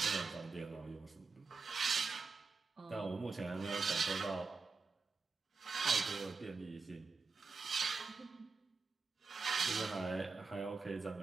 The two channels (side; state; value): left; quieter; 4.5 dB